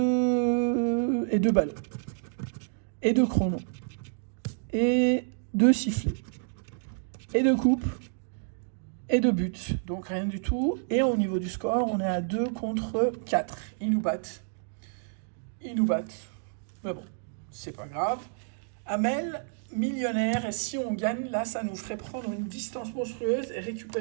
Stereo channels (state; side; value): silent; left; digital silence